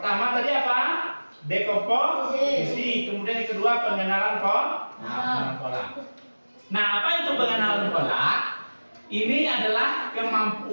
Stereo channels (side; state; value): both; inverted; correlation -1.00